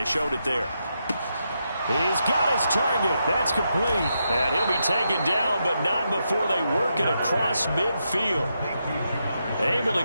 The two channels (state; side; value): inverted; both; correlation -0.83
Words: showed it there. He's got his target. That's complete. And he'll be taken down, but not before they work it across midfield. Able